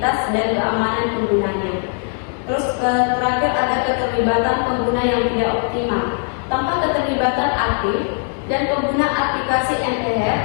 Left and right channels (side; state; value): right; silent; 57 dB below the other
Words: dan keamanan penggunanya. Terus terakhir ada keterlibatan pengguna yang tidak optimal. Tanpa keterlibatan aktif dan pengguna aplikasi